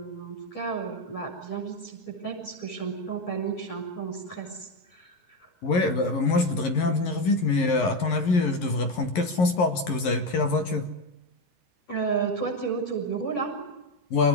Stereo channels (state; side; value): late; right; 11 ms